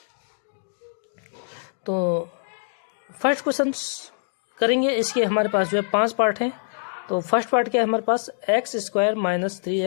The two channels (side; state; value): right; silent; digital silence